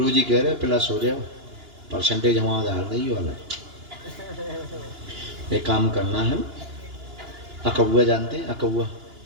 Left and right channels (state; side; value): late; left; 2.9 ms